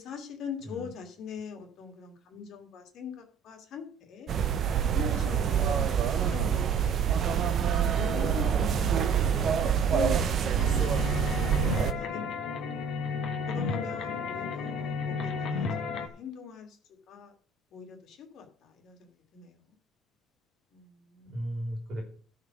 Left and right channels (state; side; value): quieter; left; 4.7 dB